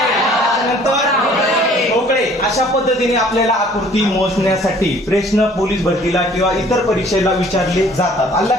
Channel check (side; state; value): both; normal; correlation 0.55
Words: त्याच्यानंतर ठोकळे. अशा पद्धतीने आपल्याला आकृती मोजण्यासाठी प्रश्न पोलीस भरतीला किंवा इतर परीक्षेला विचारले जातात. आलं